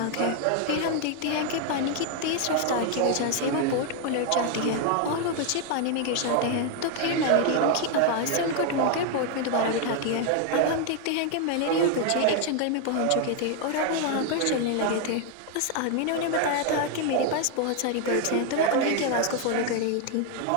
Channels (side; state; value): both; different; correlation 0.00